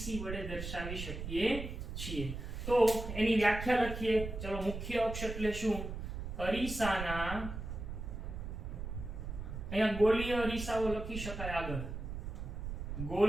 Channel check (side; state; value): right; noise; rumble, 6 dB below the sound